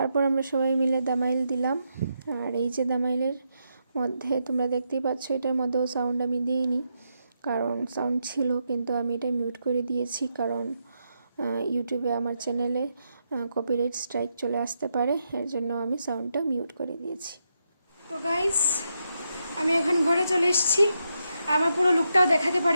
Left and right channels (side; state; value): both; inverted; correlation -0.83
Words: আমরা সবাই মিলে দামাইল দিলাম। আর এই যে দামাইলের মধ্যে তোমরা দেখতেই পাচ্ছ, এটার মধ্যেও সাউন্ড আমি দিইনি কারণ সাউন্ড ছিল, কিন্তু আমি এটা মিউট করে দিয়েছি কারণ ইউটিউবে আমার চ্যানেলে কপিরাইট স্ট্রাইক চলে আসতে পারে, এর জন্য আমি সাউন্ডটা মিউট করে দিয়েছি। তো গাইস, আমি এখন ঘরে চলে এসেছি। আমার পুরো লুকটাও দেখাতে